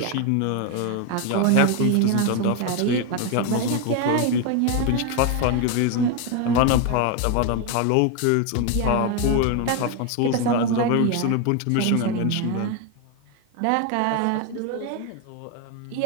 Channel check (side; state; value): both; different; correlation 0.01